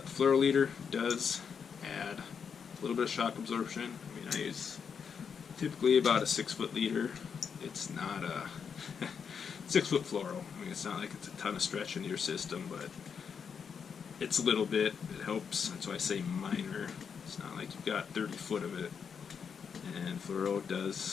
the fluoro leader does add a little bit of shock absorption. I mean, I use typically about a 6-foot leader. It's not a 6-foot fluoro. I mean, it's not like it's a ton of stretch into your system, but it's a little bit. It helps. That's why I say minor. It's not like you've got 30 foot of it. And fluoro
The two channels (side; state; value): right; quieter; 6.6 dB